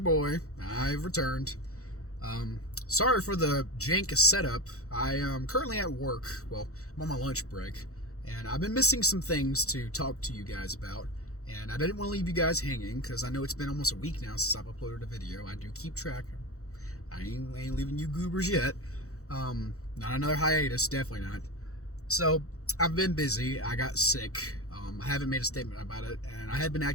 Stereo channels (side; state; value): right; late; 0.65 ms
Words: boy. I've returned. Sorry for the jank setup. I am currently at work. Well, I'm on my lunch break, and I've been missing some things to talk to you guys about. And I didn't want to leave you guys hanging because I know it's been almost a week now since I've uploaded a video. I do keep track. I ain't leaving you goobers yet. Not another hiatus, definitely not. So I've been busy. I got sick. I haven't made a statement about it, and I have been